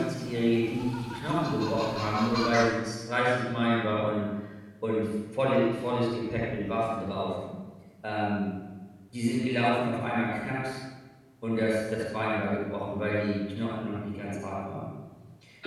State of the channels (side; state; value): both; identical; correlation 1.00